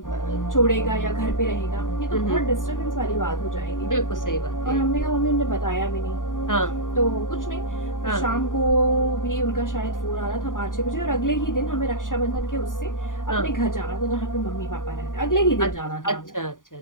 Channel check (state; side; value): late; right; 0.88 ms